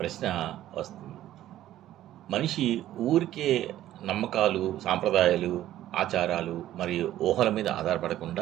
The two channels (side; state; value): left; quieter; 13.2 dB